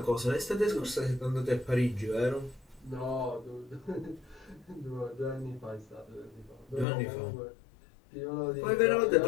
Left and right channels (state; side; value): drops out; right; at 6.9 s